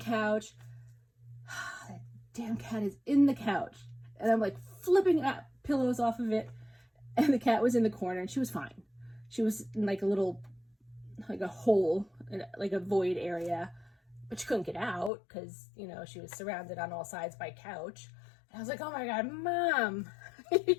That damn cat is in the couch. And I'm like flipping up pillows off of it. And the cat was in the corner and she was fine. She was in like a little, like a hole, like a void area. But she couldn't get out because, you know, she was surrounded on all sides by couch. And I was like, oh my God, Mom,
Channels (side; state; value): right; drops out; at 15.1 s